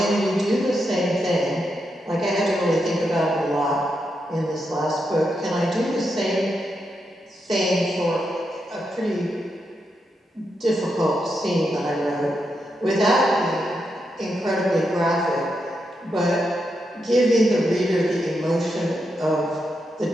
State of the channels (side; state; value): both; normal; correlation 0.84